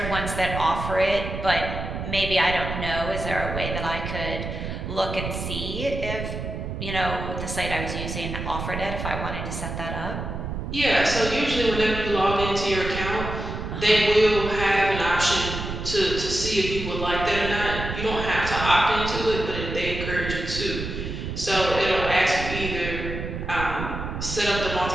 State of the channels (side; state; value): right; noise; rumble, 6 dB below the sound